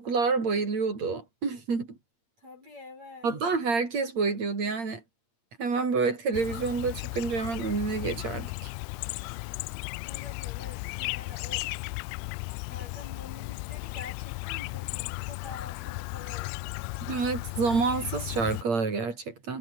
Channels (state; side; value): late; left; 8.7 ms